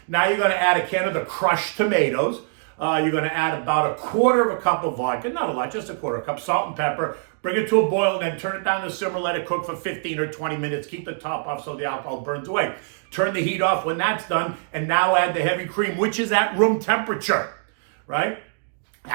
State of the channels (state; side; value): silent; left; digital silence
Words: Now you're going to add a can of the crushed tomatoes. You're going to add about 1/4 cup of vodka, not a lot, just 1/4 cup, salt and pepper. Bring it to a boil and then turn it down to simmer. Let it cook for 15 or 20 minutes. Keep the top off so the alcohol burns away. Turn the heat off when that's done, and now add the heavy cream, which is at room temperature, right?